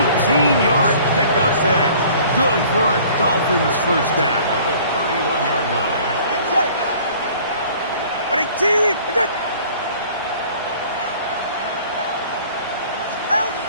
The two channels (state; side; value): inverted; both; correlation -0.51